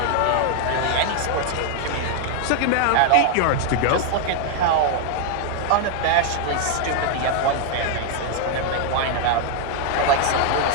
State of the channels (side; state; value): both; different; correlation 0.00